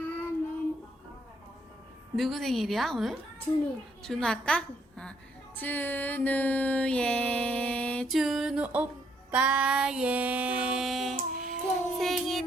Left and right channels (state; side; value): normal; both; correlation 0.71